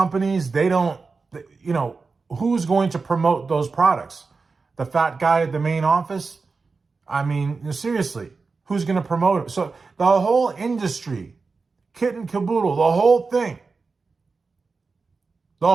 they don't, who's going to promote those products? The fat guy at the main office? I mean, seriously, who's going to promote it? So the whole industry, kit and caboodle, the whole thing.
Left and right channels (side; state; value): left; quieter; 4.4 dB